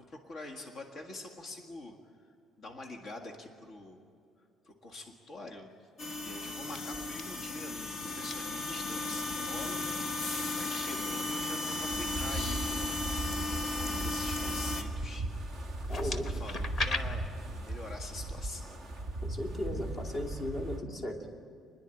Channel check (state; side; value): normal; both; correlation 0.72